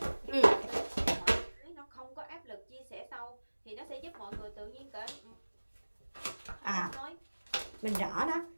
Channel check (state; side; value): inverted; both; correlation -1.00